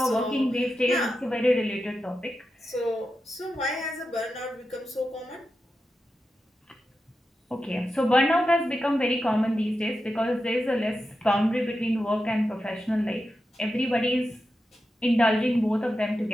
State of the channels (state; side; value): normal; both; correlation 0.90